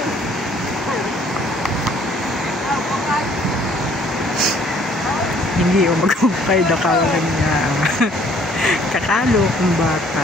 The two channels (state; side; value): normal; both; correlation 0.59